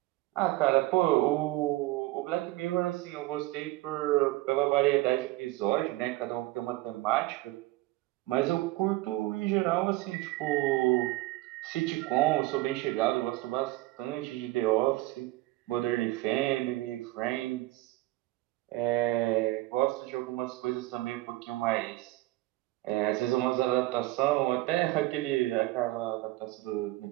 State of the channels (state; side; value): quieter; left; 18.6 dB